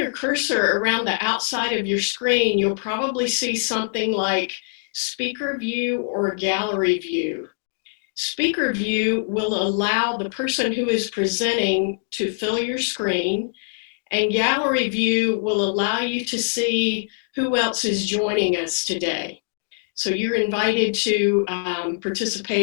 cursor around the outside of your screen, you'll probably see something like speaker view or gallery view. Speaker view will allow the person who is presenting to fill your screen, and gallery view will allow you to see who else is joining us today. So you're invited to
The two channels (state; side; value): silent; right; digital silence